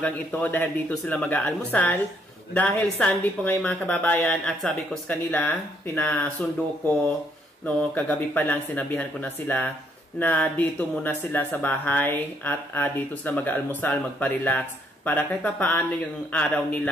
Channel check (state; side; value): normal; both; correlation 0.70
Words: ito dahil dito sila mag-aalmusal. Dahil Sunday po ngayon mga kababayan at sabi ko sa kanila, pinasundo ko, no, kagabi pa lang sinabihan ko na sila na dito muna sila sa bahay at dito sila mag-aalmusal, magpa-relax para kahit pa paano yung araw